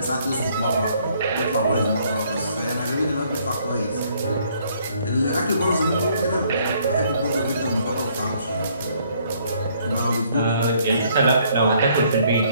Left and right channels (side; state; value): both; inverted; correlation -0.65